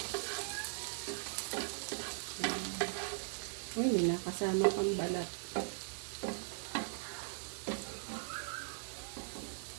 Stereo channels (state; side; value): silent; left; digital silence